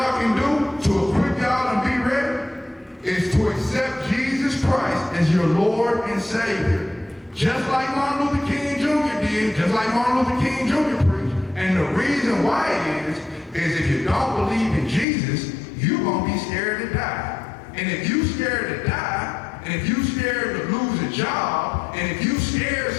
can do to equip y'all and be ready is to accept Jesus Christ as your Lord and Savior. Just like Martin Luther King Jr. did, just like Martin Luther King Jr. preached. And the reason why is if you don't believe in Jesus, you're gonna be scared to die. And if you scared to die, and if you scared to lose a job, and if you scared,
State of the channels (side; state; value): right; drops out; at 15.1 s